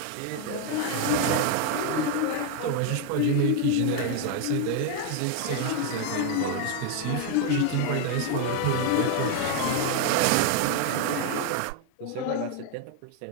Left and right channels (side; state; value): both; different; correlation 0.00